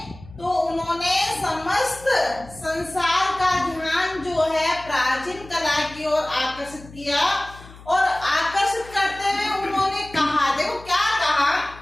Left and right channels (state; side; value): noise; left; hum, 19 dB below the sound